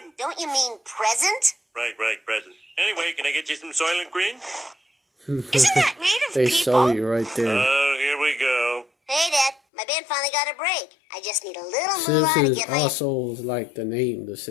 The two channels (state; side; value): drops out; right; at 9.6 s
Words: Don't you mean present? Right, present. Anyway, can I get you some Soylent Green? Isn't that made of They people? saw you right there. Oh, here we go. Hey, Dad. My band finally got a break. I just need a little moolah to Simpsons get my... also like the name, The